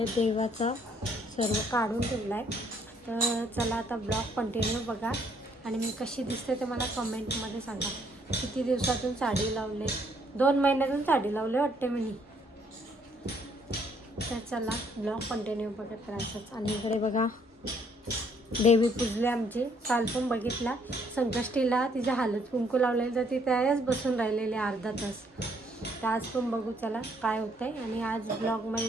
देवाचा सर्व काढून ठेवला आहे. तर चला आता ब्लॉग कंटिन्यू बघा आणि मी कशी दिसते ते मला कमेंटमध्ये सांगा. किती दिवसातून साडी लावले? 2 महिन्यातून साडी लावले वाटते मी. तर चला ब्लॉग कंटिन्यू बघत राहायचंच. आणि इकडे बघा देवी पूजले आमची. काल पण बघितला संकष्टीला तिच्या हळद कुंकू लावलेली, तर ती त्याच बसून राहिलेली अर्धा तास. तर आज पण बघू चला काय होतं आहे. आणि आज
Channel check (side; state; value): both; normal; correlation 0.66